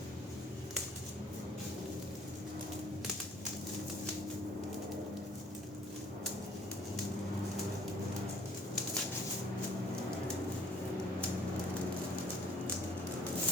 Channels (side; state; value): both; normal; correlation 0.57